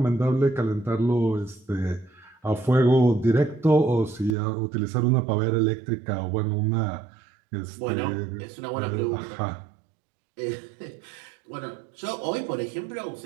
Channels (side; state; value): left; drops out; at 4.4 s